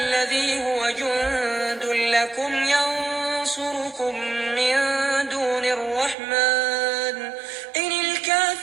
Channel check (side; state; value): left; drops out; at 6.2 s